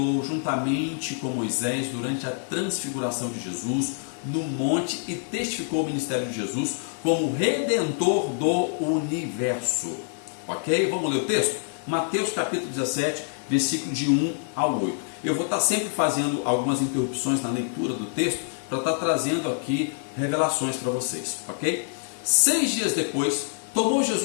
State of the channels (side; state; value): right; silent; 58 dB below the other